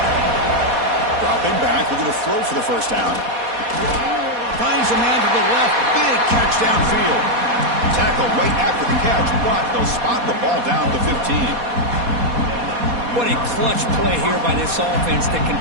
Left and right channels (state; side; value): late; left; 4.2 ms